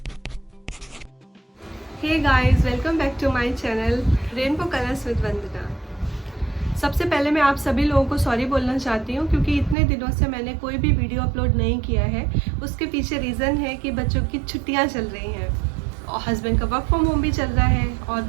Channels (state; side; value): drops out; left; at 9.8 s